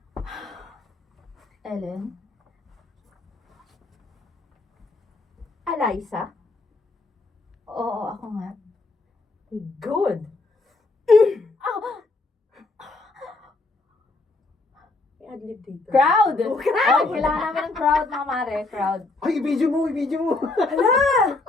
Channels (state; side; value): quieter; right; 3.3 dB